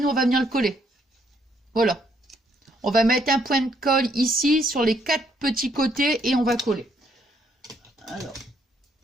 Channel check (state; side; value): normal; both; correlation 0.70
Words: on va venir le coller. Voilà. On va mettre un point de colle ici sur les 4 petits côtés et on va coller. Alors,